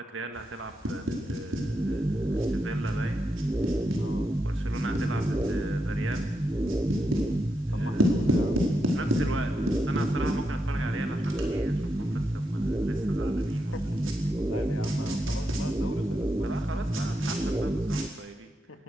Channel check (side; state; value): both; normal; correlation 0.84